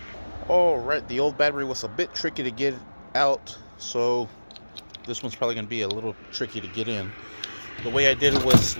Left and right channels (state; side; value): inverted; both; correlation -1.00